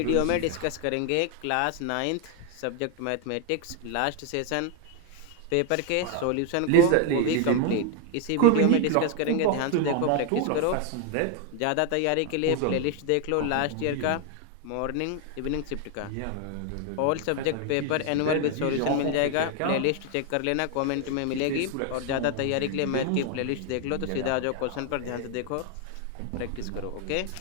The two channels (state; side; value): different; both; correlation 0.00